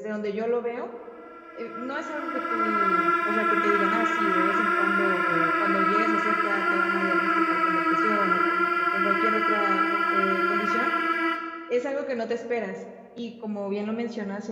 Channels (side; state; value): both; identical; correlation 1.00